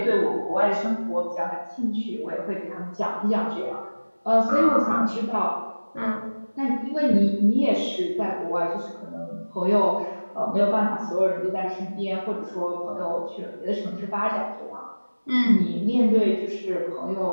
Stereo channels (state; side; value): inverted; both; correlation -1.00